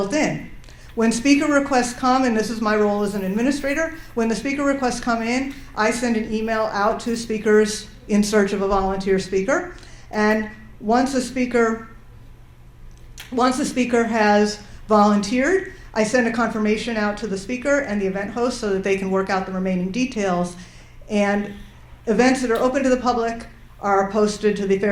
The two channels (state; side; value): identical; both; correlation 1.00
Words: in. When speaker requests come, and this is my role as an administrator, when the speaker requests come in, I send an email out to speakers in search of a volunteer speaker. And once a speaker has volunteered, I send a confirmation out to the speaker and the event host so that they can work out the remaining details. And events that are open to the public are posted to the